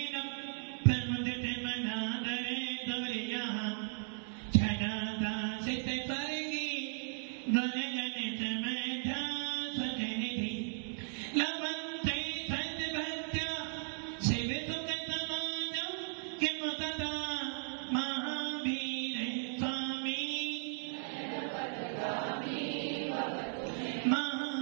प्रमुदिते मनादरे दौर्यः छदाता सिद्धे स्वर्गी गणगणित मेधा सजनिधि लवन्ते सद्भक्त्या सेवितुकतमानं किं तदा महावीर स्वामी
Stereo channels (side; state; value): left; silent; 53 dB below the other